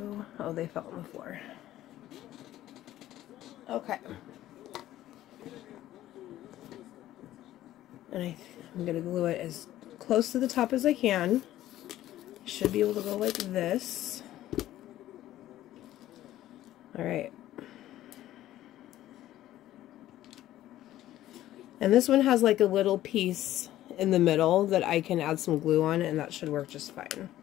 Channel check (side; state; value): right; quieter; 13.9 dB